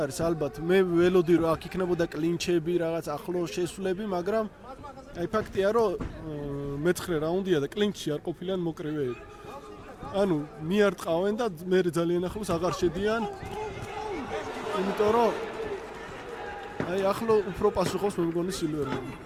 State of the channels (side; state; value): both; identical; correlation 1.00